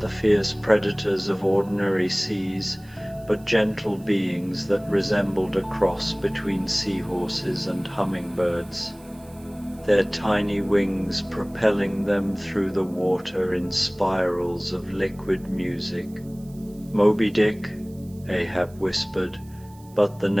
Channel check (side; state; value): right; noise; hiss, 27 dB below the sound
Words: fierce predators of ordinary seas, but gentle beings that resembled a cross between seahorses and hummingbirds, their tiny wings propelling them through the water in spirals of liquid music. "Moby Dick," Ahab whispered, but the